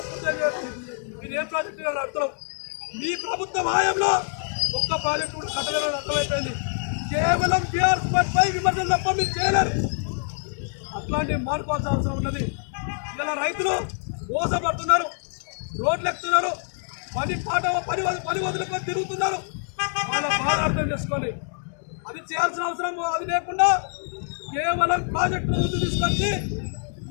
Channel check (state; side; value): silent; right; 61 dB below the other